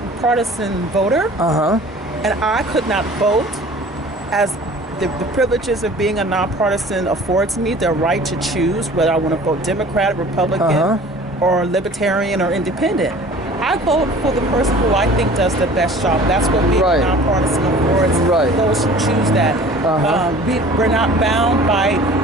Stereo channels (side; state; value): both; normal; correlation 0.46